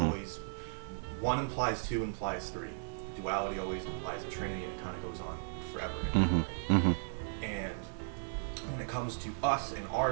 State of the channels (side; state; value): left; silent; 54 dB below the other